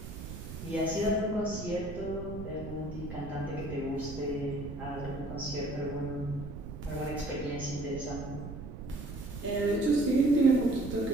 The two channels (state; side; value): noise; right; rumble, 9 dB below the sound